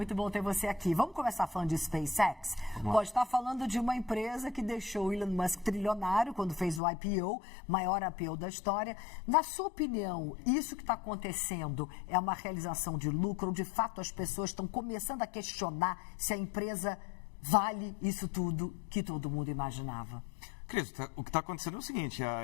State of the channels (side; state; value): right; drops out; at 6.8 s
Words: bom ter você aqui. Vamos começar falando de SpaceX? Pode estar falando de uma empresa que deixou o Elon Musk trilionário quando fez o IPO, maior IPO da história. Na sua opinião, isso que está acontecendo é uma realização de lucro ou de fato as pessoas estão começando a questionar se a empresa vale isso tudo que todo mundo imaginava? Cris, o que está acontecendo é o seguinte,